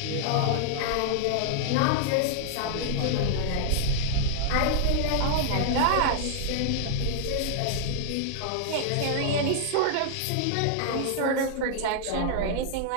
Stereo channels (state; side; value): different; both; correlation -0.01